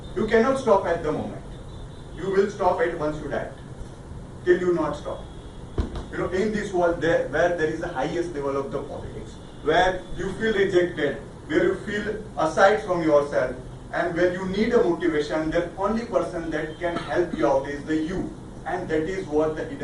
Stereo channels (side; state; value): both; identical; correlation 1.00